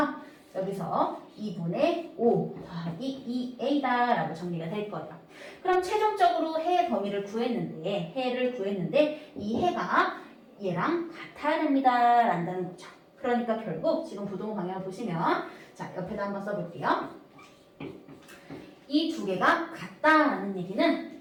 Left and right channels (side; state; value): both; identical; correlation 1.00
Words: 여기서 2분의 5 더하기 2a다 라고 정리가 될 거예요. 그럼 최종적으로 해의 범위를 구했는데 해를 구했는데 이 해가 얘랑 같아야 됩니다 라는 거죠. 그러니까 결국 지금 부동호 방향을 보시면 자 옆에다 한번 써볼게요. 이 두 개가 같다라는 얘기는